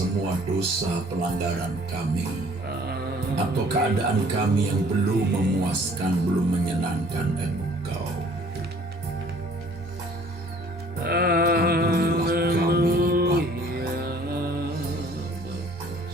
dosa pelanggaran kami, atau keadaan kami yang belum memuaskan, belum menyenangkan Engkau. Ampunilah kami, Bapa.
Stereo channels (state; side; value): normal; both; correlation 0.55